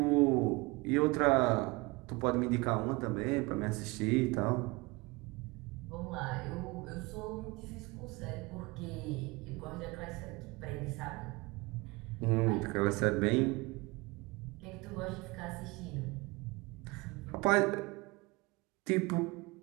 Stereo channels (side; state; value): left; quieter; 24.5 dB